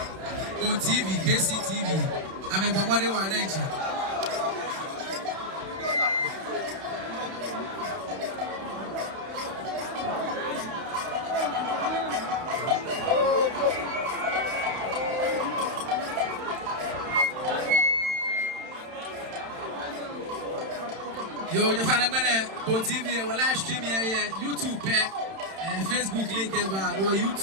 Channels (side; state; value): left; late; 31 ms